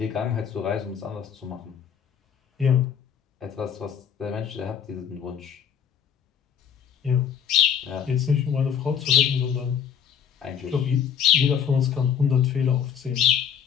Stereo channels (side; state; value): right; quieter; 8.0 dB